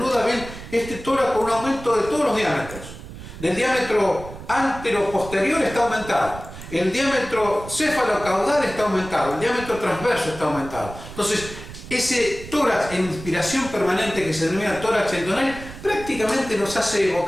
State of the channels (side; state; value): right; noise; rumble, 13 dB below the sound